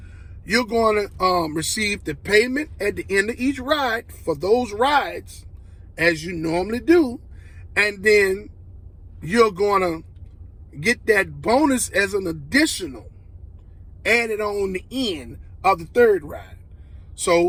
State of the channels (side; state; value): both; identical; correlation 1.00